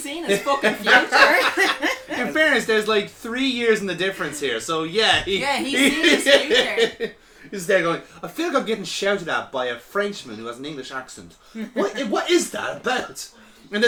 seen his fucking future. In fairness, there's like 3 years in the difference here, so yeah. He's seen his future. He's there going, I feel like I'm getting shouted at by a Frenchman who has an English accent. What is that about? And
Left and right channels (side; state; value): both; identical; correlation 1.00